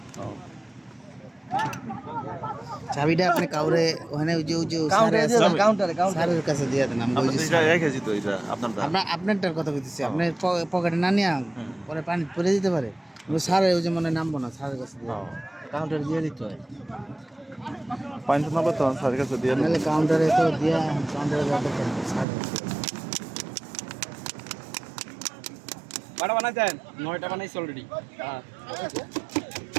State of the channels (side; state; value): left; drops out; at 22.2 s